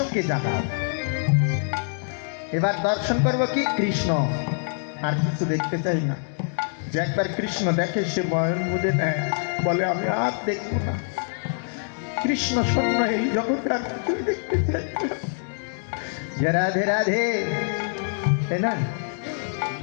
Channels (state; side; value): silent; right; digital silence